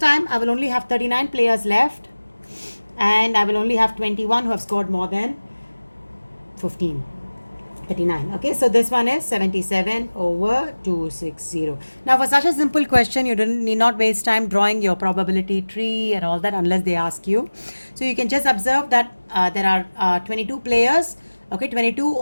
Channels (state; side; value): inverted; both; correlation -1.00